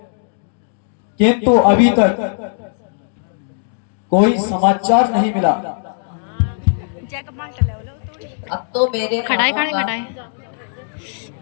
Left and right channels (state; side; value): silent; right; digital silence